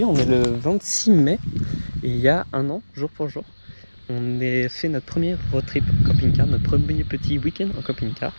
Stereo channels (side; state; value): both; inverted; correlation -1.00